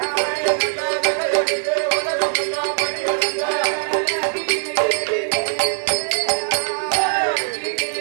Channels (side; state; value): left; silent; digital silence